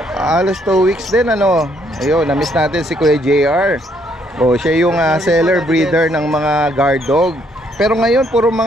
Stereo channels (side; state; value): both; normal; correlation 0.70